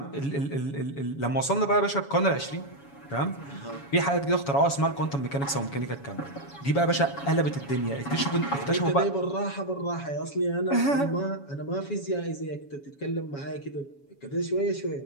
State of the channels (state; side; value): late; right; 7.2 ms